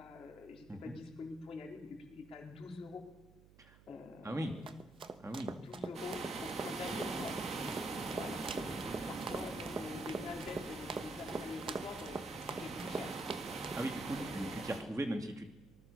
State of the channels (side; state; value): right; noise; hum, 22 dB below the sound